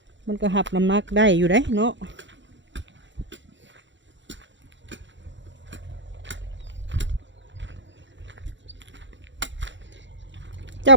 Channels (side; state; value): left; late; 0.54 ms